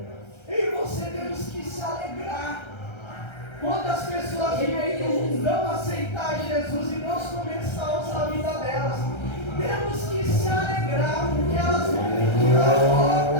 E você temos que se alegrar. Quantas pessoas vêm aí no mundão aceitar Jesus e Deus começar a usar a vida delas? Temos que se alegrar, porque elas vão pedir a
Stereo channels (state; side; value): late; right; 1.3 ms